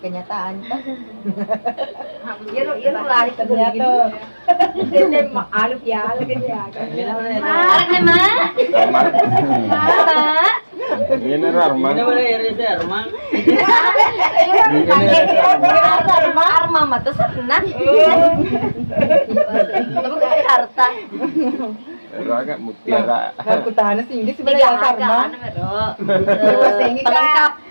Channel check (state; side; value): inverted; both; correlation -1.00